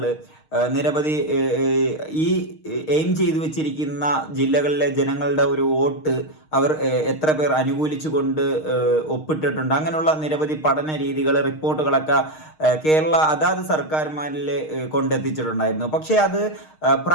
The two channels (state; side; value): late; right; 6.5 ms